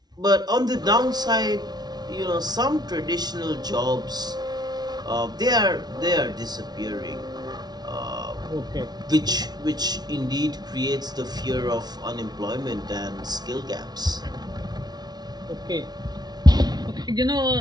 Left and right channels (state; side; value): late; left; 0.19 ms